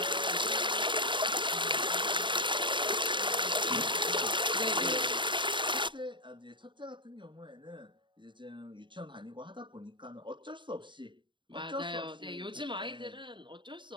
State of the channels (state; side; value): late; left; 0.23 ms